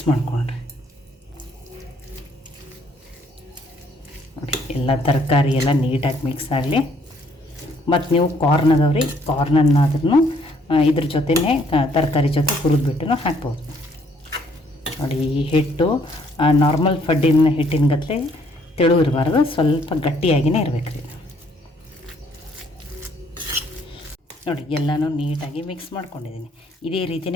ಮಾಡಿಕೊಂಡ್ರೆ ನೋಡಿ ಎಲ್ಲ ತರಕಾರಿ ಎಲ್ಲ ನೀಟಾಗಿ ಮಿಕ್ಸ್ ಆಗಲಿ. ಮತ್ತು ನೀವು ಕಾರ್ನ್ ಅದಾವ್ರಿ, ಕಾರ್ನನ್ನಾದ್ರೂ ಇದ್ರ ಜೊತೆನೇ ತರಕಾರಿ ಜೊತೆ ಹುರಿದ್ಬಿಟ್ಟು ಹಾಕ್ಬೋದು. ನೋಡಿ ಈ ಹಿಟ್ಟು ನಾರ್ಮಲ್ ಫಡ್ಡಿನ ಹಿಟ್ಟಿನ ಗತ್ತಲೆ ತೆಳು ಇರಬಾರ್ದು, ಸ್ವಲ್ಪ ಗಟ್ಟಿಯಾಗಿಯೇ ಇರಬೇಕು ರೀ. ನೋಡಿ ಎಲ್ಲನೂ ನೀಟಾಗಿ ಮಿಕ್ಸ್ ಮಾಡ್ಕೊಂಡಿದ್ದೀನಿ. ಇದೇ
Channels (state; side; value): normal; both; correlation 0.65